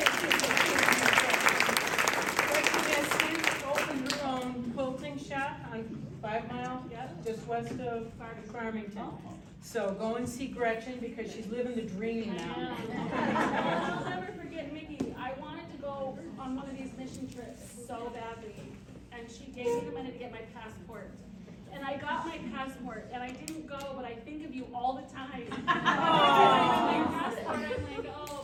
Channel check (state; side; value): identical; both; correlation 1.00